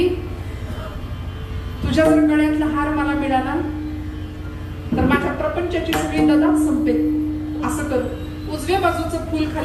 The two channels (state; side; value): identical; both; correlation 1.00